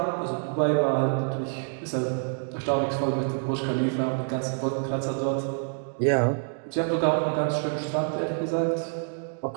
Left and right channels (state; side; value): silent; left; 57 dB below the other